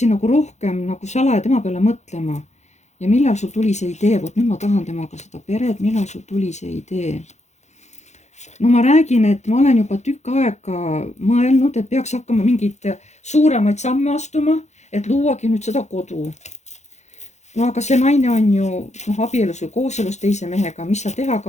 nagu rohkem nagu salaja tema peale mõtlema. ja millal sul tuli see idee, vot nüüd ma tahan temaga seda peret, millal sul tuli see idee? no ma räägin, et ma olen juba tükk aega mõelnud, et peaks hakkama mingeid suuremaid samme astuma, et luuagi nüüd seda kodu. no aga see naine on ju abielus või kooselus teise mehega, mis sa teha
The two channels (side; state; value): right; late; 0.33 ms